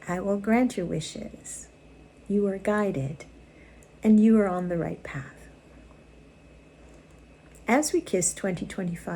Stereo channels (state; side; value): identical; both; correlation 1.00